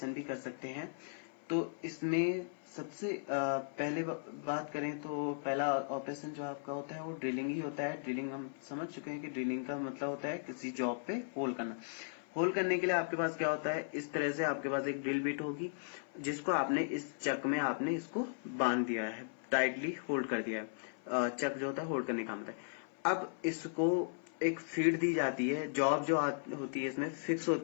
भी कर सकते हैं। तो इसमें सबसे पहले बात करें तो पहला ऑपरेशन जो आपका होता है वो ड्रिलिंग ही होता है। ड्रिलिंग हम समझ चुके हैं कि ड्रिलिंग का मतलब होता है किसी जॉब पे होल करना। होल करने के लिए आपके पास क्या होता है, इस तरह से आपके पास एक ड्रिल बिट होगी जिसको आपने इस चक में आपने इसको बांध दिया है, टाइटली होल्ड कर दिया है। चक जो होता है होल्ड करने का मतलब है। अब इसको एक फीड दी जाती है, जॉब जो होती है इसमें फिक्स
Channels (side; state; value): right; silent; 53 dB below the other